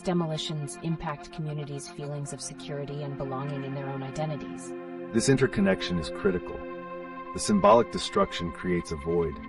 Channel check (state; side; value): identical; both; correlation 1.00